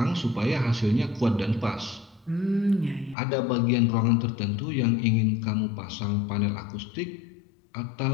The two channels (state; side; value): drops out; right; at 3.2 s